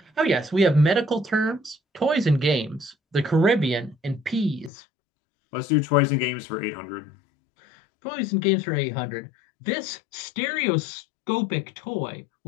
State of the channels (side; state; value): right; drops out; at 4.7 s